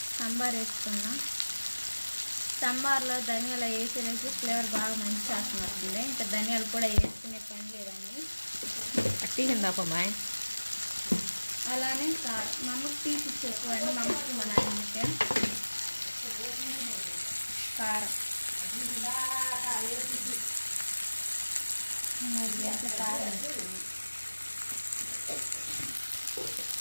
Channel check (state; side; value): inverted; both; correlation -1.00